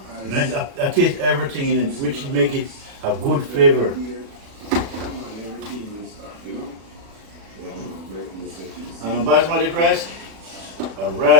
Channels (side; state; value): left; late; 36 ms